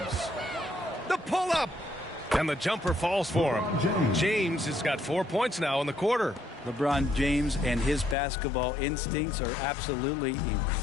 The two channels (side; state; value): right; drops out; at 8.2 s